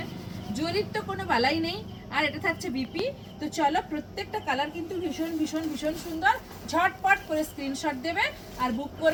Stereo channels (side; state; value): both; identical; correlation 1.00